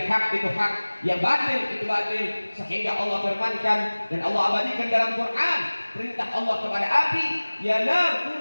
hak itu hak, yang batil itu batil, sehingga Allah firmankan dan Allah abadikan dalam Quran perintah Allah kepada api, ya nar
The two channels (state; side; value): inverted; both; correlation -1.00